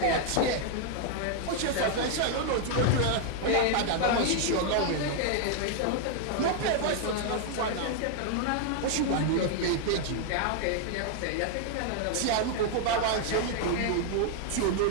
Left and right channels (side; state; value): both; different; correlation 0.00